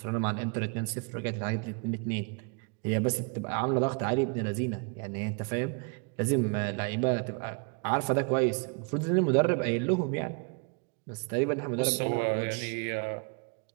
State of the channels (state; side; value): quieter; left; 35.9 dB